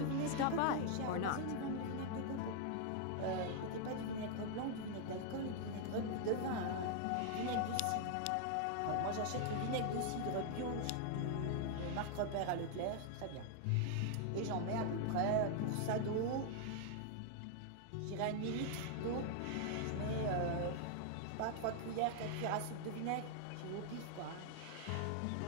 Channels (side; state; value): both; different; correlation 0.00